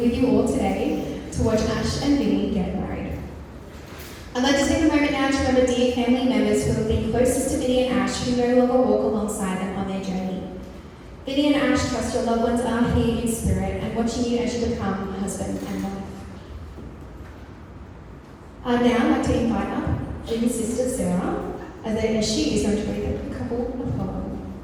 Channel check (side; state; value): both; identical; correlation 1.00